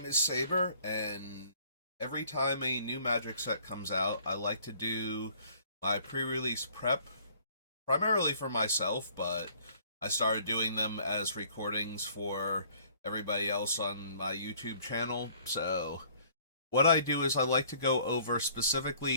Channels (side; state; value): both; inverted; correlation -0.57